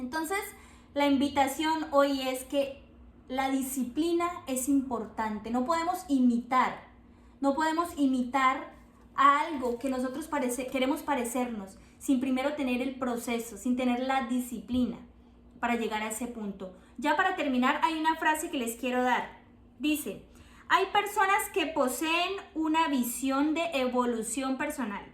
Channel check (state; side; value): identical; both; correlation 1.00